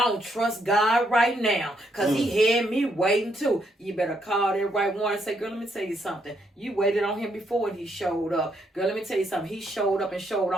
don't trust God right now. Because he had me waiting too. You better call that right one and say, girl, let me tell you something. You waited on him before and he showed up. Girl, let me tell you something. He showed up and showed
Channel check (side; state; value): both; normal; correlation 0.75